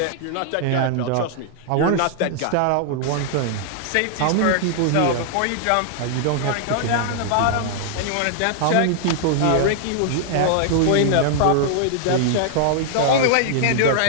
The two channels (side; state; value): both; different; correlation -0.01